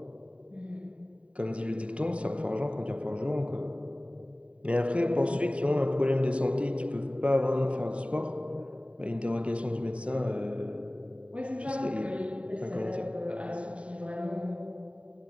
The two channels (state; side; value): late; left; 0.063 ms